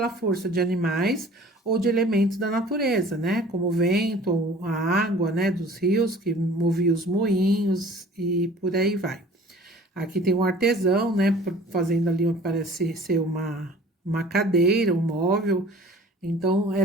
força de animais ou de elementos da natureza, né? Como o vento, ou a água, né? Dos rios que movia os moinhos e por aí vai. Aqui tem um artesão, né? Fazendo ali, parece ser uma cadeira, um móvel. Então,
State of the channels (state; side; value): normal; both; correlation 0.47